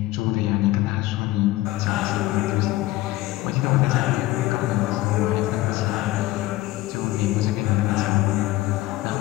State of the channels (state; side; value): quieter; right; 17.4 dB